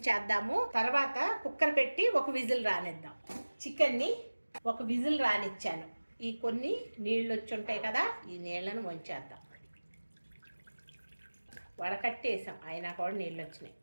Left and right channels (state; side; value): inverted; both; correlation -1.00